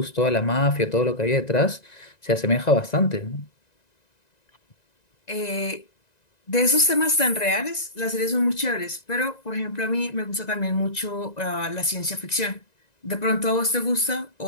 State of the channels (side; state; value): right; late; 1.9 ms